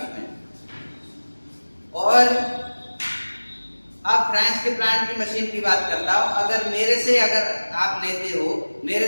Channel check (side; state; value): both; inverted; correlation -1.00